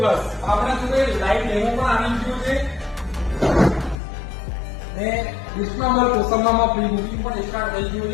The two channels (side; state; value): right; drops out; at 4.0 s